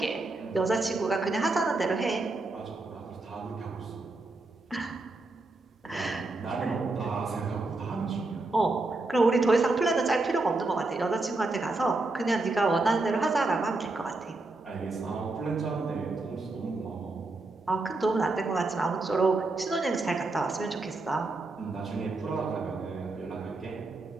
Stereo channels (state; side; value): quieter; left; 3.2 dB